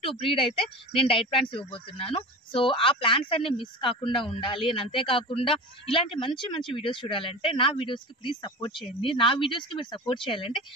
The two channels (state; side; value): normal; both; correlation 0.32